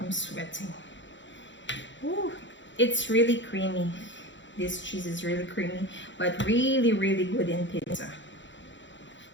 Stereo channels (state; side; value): late; right; 0.54 ms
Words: sweating. Ooh, it's really creamy. This cheese is really creamy, but really, really good in pizza.